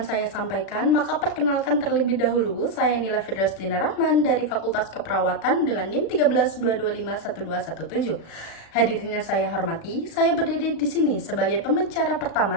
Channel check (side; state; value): right; late; 36 ms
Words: saya sampaikan, maka perkenalkan terlebih dahulu, saya Nila Fidrastina Rahman dari Fakultas Keperawatan dengan NIM 13225117. Hadirin yang saya hormati, saya berdiri di sini sebagai pembicara